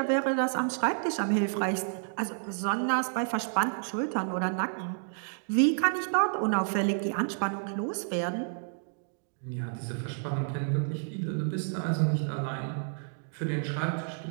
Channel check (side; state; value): left; silent; digital silence